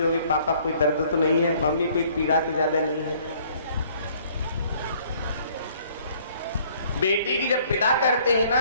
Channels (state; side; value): inverted; both; correlation -0.59